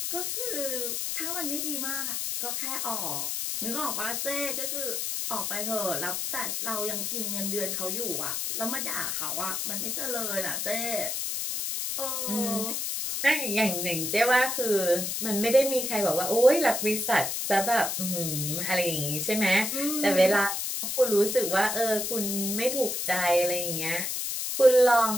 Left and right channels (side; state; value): left; noise; hiss, 2 dB below the sound